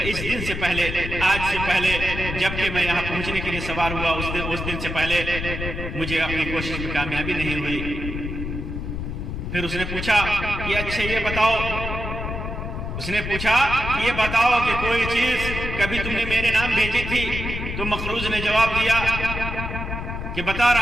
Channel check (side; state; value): left; noise; rumble, 5 dB below the sound